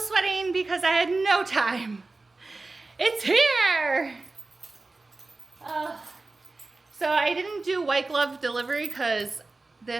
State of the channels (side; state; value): left; quieter; 3.4 dB